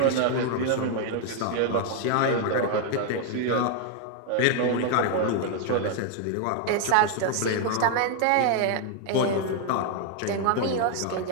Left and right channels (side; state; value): both; different; correlation 0.00